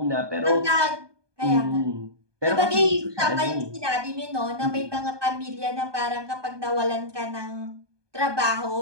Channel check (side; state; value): left; late; 1.2 ms